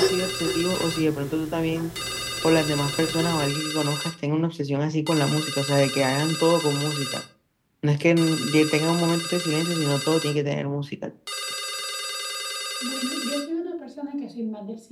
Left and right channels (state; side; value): identical; both; correlation 1.00